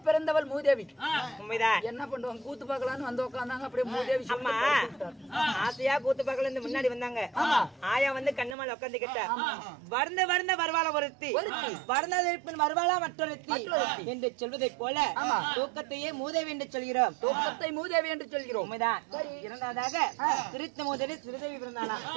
பிறந்தவள் மூதேவி. உண்மைதான். என்ன பண்ணுவாங்க, கூத்து பார்க்கலான்னு வந்து உட்கார்ந்தாங்க. அப்படியே மூதேவி அம்மா ஆசையா கூத்து பார்க்கல முன்னாடி வந்தாங்க. ஆயா வந்து கண்ணமால உட்காந்துக்கிட்ட வர்ந்த வர்ந்த வருவாளா ஒருத்தி, வர்ணதற்பின் வருவாளா மற்றொருத்தி என்று சொல்வதை போல தூக்கத்தையே மூதேவி என்று சொல்கிறோம். தூக்கத்தை மூதேவி என்று சொல்கிறோம். உண்மைதான். இரண்டாவதாக சிரித்த மூதேவி சிறுதேவி பிறந்தாளா?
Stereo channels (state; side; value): drops out; left; at 8.6 s